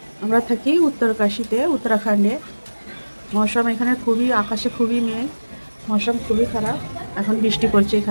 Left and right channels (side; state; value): both; inverted; correlation -1.00